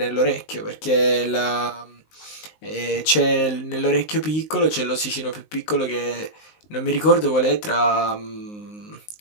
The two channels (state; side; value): late; right; 19 ms